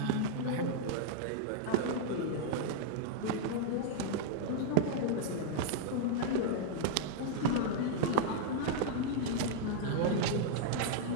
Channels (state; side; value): different; both; correlation -0.01